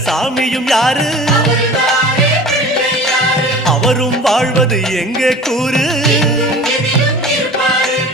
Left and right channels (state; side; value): normal; both; correlation 0.40